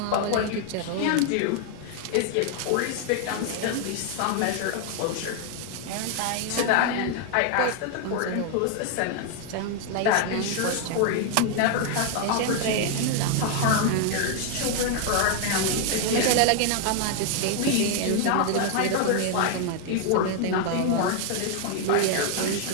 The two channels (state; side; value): different; both; correlation 0.00